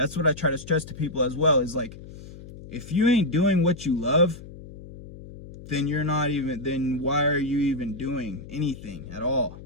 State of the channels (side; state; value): left; noise; hum, 15 dB below the sound